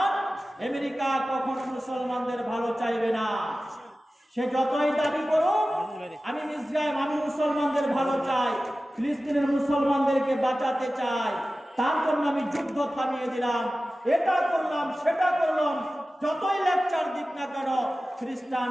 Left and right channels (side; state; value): both; normal; correlation 0.95